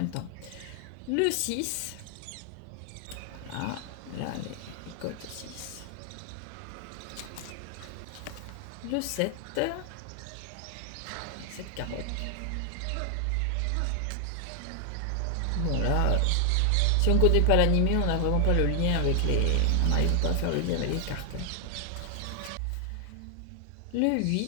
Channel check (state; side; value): different; both; correlation 0.00